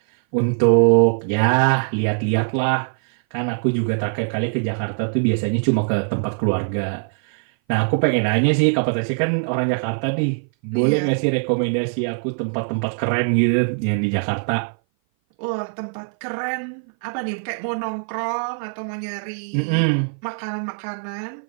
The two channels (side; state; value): left; silent; 58 dB below the other